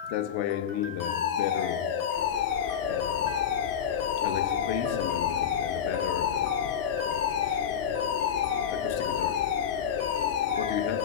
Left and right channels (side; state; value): right; quieter; 8.4 dB